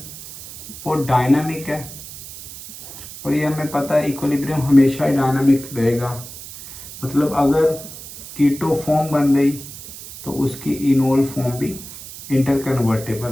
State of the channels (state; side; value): noise; right; hiss, 13 dB below the sound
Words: वो डायनामिक है, और ये हमें पता है इक्विलिब्रियम हमेशा ही डायनामिक रहेगा। मतलब अगर कीटो फॉर्म बन गई तो उसकी इनोल फॉर्म भी